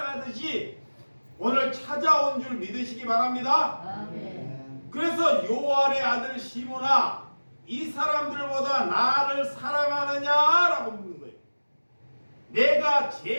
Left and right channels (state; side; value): inverted; both; correlation -1.00